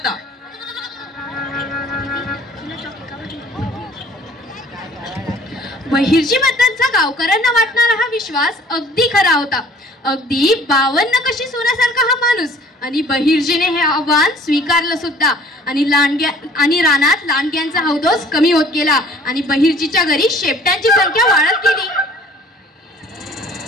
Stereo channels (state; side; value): normal; both; correlation 0.53